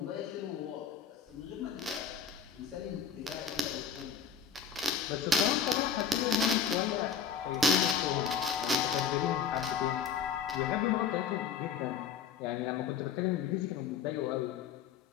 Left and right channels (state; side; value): quieter; right; 6.6 dB